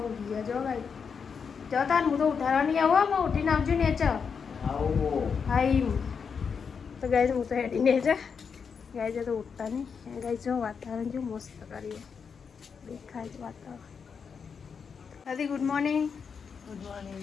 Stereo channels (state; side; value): quieter; right; 6.1 dB